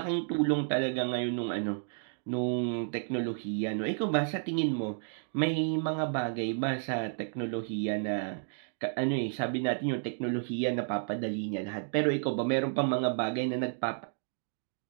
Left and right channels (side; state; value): left; silent; digital silence